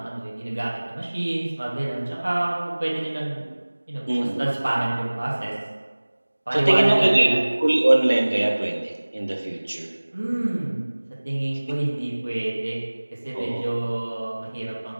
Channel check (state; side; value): inverted; both; correlation -1.00